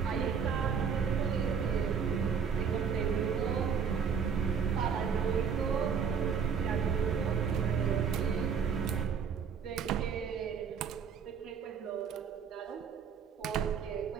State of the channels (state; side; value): quieter; left; 6.7 dB